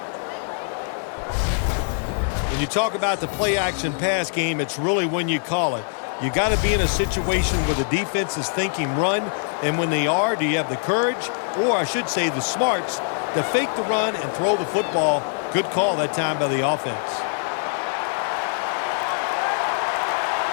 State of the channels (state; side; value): silent; right; 63 dB below the other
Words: When you talk about the play-action pass game, it's really when you call it. You got to be in a situation where the defense is thinking run, and when they are, do you have the courage, or I should say the smarts, to fake the run and throw the football? Good call that time by the offense.